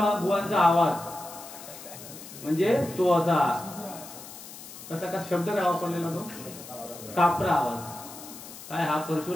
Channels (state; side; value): noise; left; hiss, 14 dB below the sound